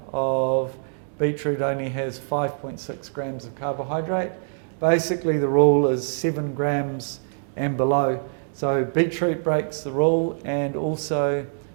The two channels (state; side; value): silent; left; 62 dB below the other